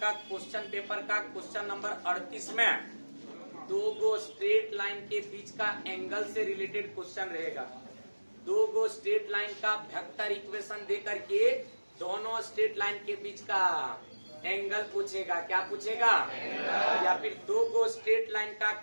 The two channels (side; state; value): both; inverted; correlation -1.00